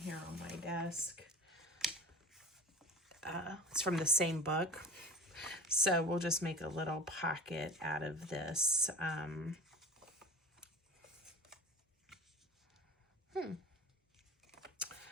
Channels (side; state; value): both; normal; correlation 0.36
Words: on my desk, it's from the same book. So we'll just make a little pocket out of this. Kind